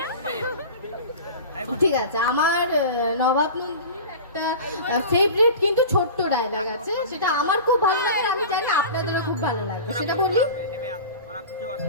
ঠিক আছে। আমার নবাব নন্দিনীর একটা ফেভারিট কিন্তু ছোট্ট ডায়লগ আছে, সেটা আমার খুব ভালো লাগে, আমি জানি আপনাদেরও খুব ভালো লাগবে। সেটা বলি।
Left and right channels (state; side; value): inverted; both; correlation -0.34